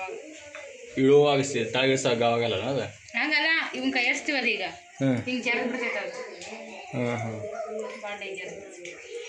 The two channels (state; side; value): identical; both; correlation 1.00